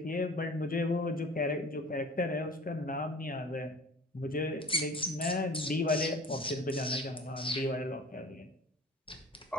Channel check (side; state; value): both; normal; correlation 0.42